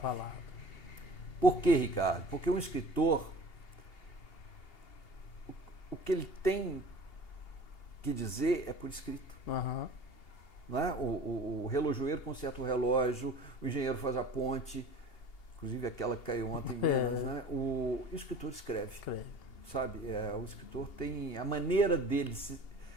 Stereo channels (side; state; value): right; late; 2.8 ms